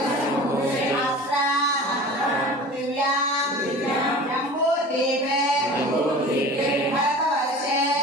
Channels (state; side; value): normal; both; correlation 0.38